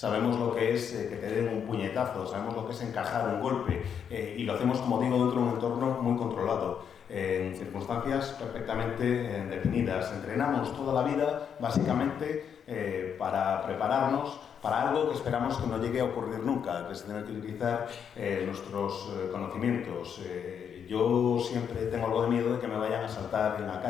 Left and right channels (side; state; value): right; quieter; 7.8 dB